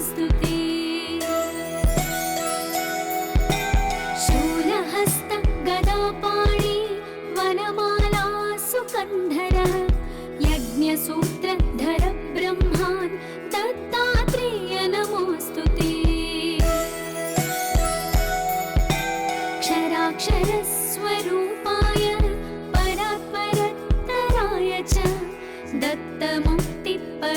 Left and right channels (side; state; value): both; identical; correlation 1.00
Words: शूलहस्त गदापाणि वनमाला सुकन्धर यज्ञसूत्रधर ब्रह्मान् दत्तात्रेय नमोऽस्तुते। क्षराक्षरस्वरूपाय परात्परतराय च